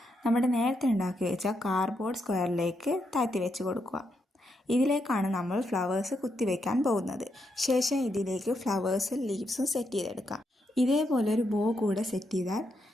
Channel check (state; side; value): normal; both; correlation 0.81